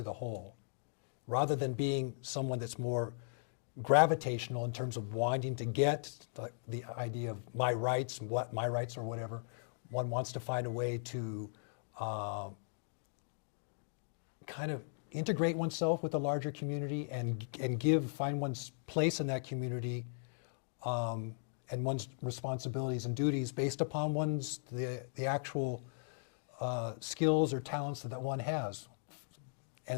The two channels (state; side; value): silent; right; digital silence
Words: the whole, rather than being someone that's more gravitational in terms of wanting to get the idea of my rights, what my rights or whatever. One wants to find a way to kind of integrate oneself with the larger community and find one's place in that community and one's responsibilities and duties based upon the actual skills or talents that one has.